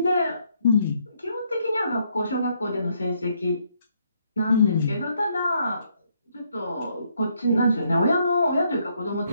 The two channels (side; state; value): both; inverted; correlation -0.72